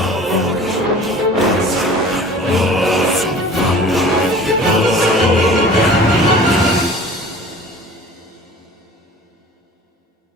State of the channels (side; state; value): both; normal; correlation 0.44